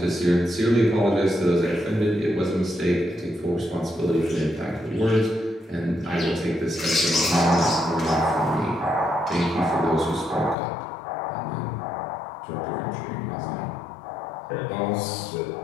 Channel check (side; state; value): right; drops out; at 10.6 s